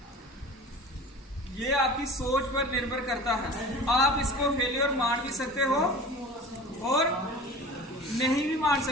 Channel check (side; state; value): both; normal; correlation 0.38